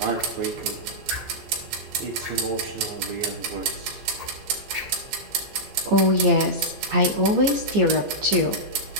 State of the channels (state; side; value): late; left; 15 ms